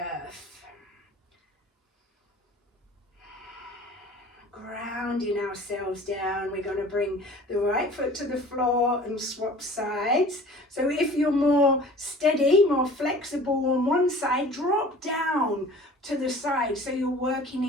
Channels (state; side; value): normal; both; correlation 0.45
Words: Grounding ourselves down. We're going to bring the right foot to the floor and swap sides. So if you're more steady, more flexible on one side, drop down to the side so you're working